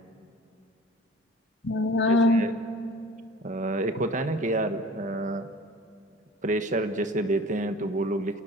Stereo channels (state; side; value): normal; both; correlation 0.44